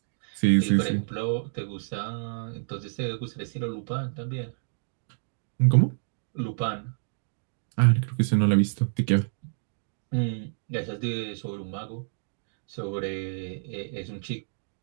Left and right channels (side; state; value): left; silent; digital silence